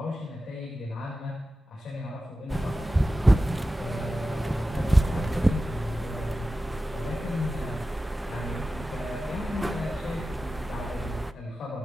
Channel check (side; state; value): both; normal; correlation 0.94